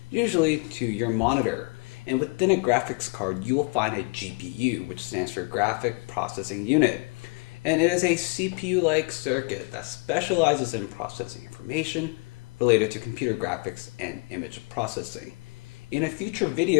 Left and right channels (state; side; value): quieter; right; 31.8 dB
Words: usually to your monitor. And within a graphics card, you will find a GPU, which stands for Graphic Processing Unit. And it is a CPU-like circuit that specializes in processing information related to computer graphics and image processing. In a future